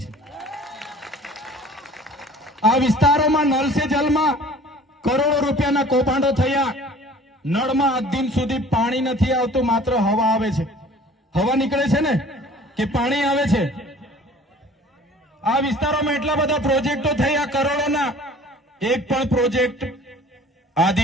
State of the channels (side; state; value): both; normal; correlation 0.48